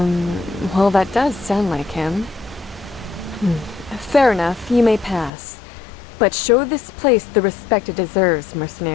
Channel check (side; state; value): right; drops out; at 5.3 s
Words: that does sound like him. Fair enough, you may pass. But show this place the respect it deserves,